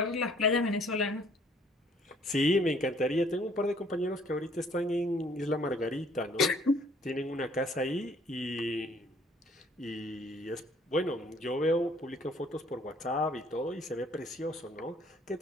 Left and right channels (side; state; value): both; normal; correlation 0.60